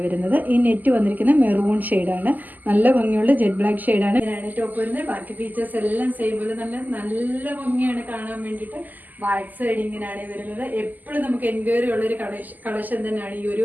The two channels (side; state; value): left; late; 0.083 ms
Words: വരുന്നത്. ഈ നെറ്റ് വന്നിരിക്കുന്നത് മെറൂൺ ഷെയ്ഡാണ്. നല്ല ഭംഗിയുള്ള ജെറ്റ് ബ്ലാക്ക് ഷെയ്ഡാണ്. ഇങ്ങനെയാണ് ടോപ്പ് വരുന്നത്. ബാക്കി ഫീച്ചേഴ്സ് എല്ലാം സെയിം പോലെ നല്ല ഭംഗിയാണ് കാണാൻ വേണ്ടിയിട്ട്. ബാക്ക് സൈഡ് ഇങ്ങനെയാണ് വരുന്നത്. എപ്പോഴും നമുക്ക് എൻക്വയറി ഉള്ളൊരു കളക്ഷൻ തന്നെയാണ് ഈ ഒരു